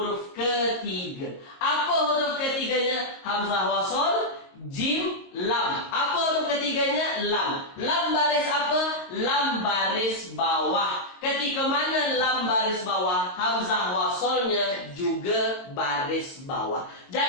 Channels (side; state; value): right; late; 22 ms